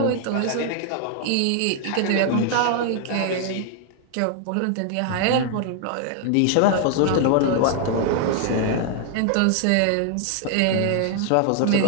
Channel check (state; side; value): different; both; correlation 0.00